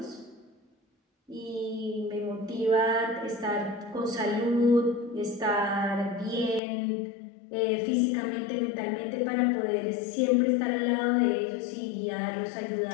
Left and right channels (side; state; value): right; drops out; at 6.6 s